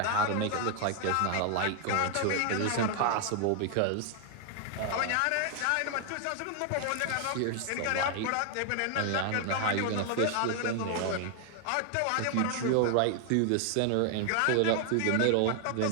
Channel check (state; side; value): different; both; correlation 0.00